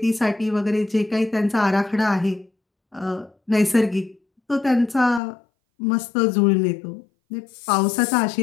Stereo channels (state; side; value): drops out; right; at 5.2 s